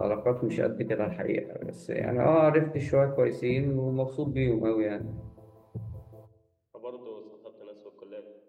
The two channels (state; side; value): identical; both; correlation 1.00